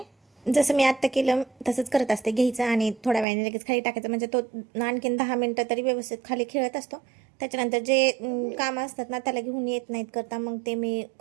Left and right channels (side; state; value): left; drops out; at 3.2 s